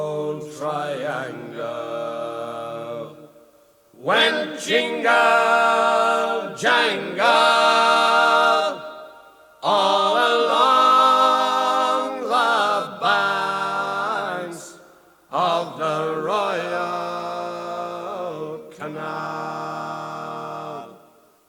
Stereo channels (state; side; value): identical; both; correlation 1.00